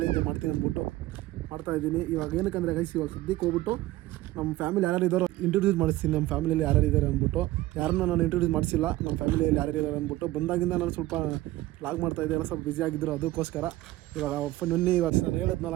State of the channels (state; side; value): quieter; left; 17.0 dB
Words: ಮಾಡ್ತೀನಿ ಅಂದ್ಬಿಟ್ಟು ಮಾಡ್ತಾಯಿದ್ದೀನಿ. ಇವಾಗ ಏನಕ್ಕಂದರೆ ಗೈಸ್, ಇವಾಗ ಸದ್ಯಕ್ಕೆ ಹೋಗ್ಬಿಟ್ಟು ನಮ್ಮ ಫ್ಯಾಮಿಲಿ ಯಾರು ಇದ್ದಾರೋ ಇಂಟ್ರೊಡ್ಯೂಸ್ ಮಾಡಿಸ್ತೀನಿ. ನಮ್ಮ ಫ್ಯಾಮಿಲಿಯಲ್ಲಿ ಯಾರು ಇದ್ದಾರೆ ಅಂದ್ಬಿಟ್ಟು. ಯಾರನ್ನ ನಾನು ಇಂಟ್ರೊಡ್ಯೂಸ್ ಮಾಡಿಸಿಲ್ಲ, ನಮ್ಮ ಫ್ಯಾಮಿಲಿಯಲ್ಲಿ ಯಾರು ಇದ್ದಾರೆ ಅಂದ್ಬಿಟ್ಟು. ಬಂದಾಗಿಂದ ನಾನು ಸ್ವಲ್ಪ ಲಾಗ್ ಮಾಡ್ತಾಯಿದ್ದೆ, ಎಲ್ಲ ಸ್ವಲ್ಪ ಬ್ಯುಸಿ ಆಗಿದ್ದರು. ಅದಕ್ಕೋಸ್ಕರ ಇವಾಗ ನಿನ್ನೆ ಇವಾಗ ನಾನು ಹೇಳಿದ್ನಲ್ಲ,